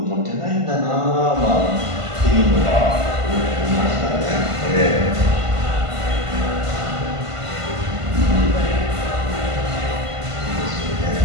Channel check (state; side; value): late; left; 1.5 ms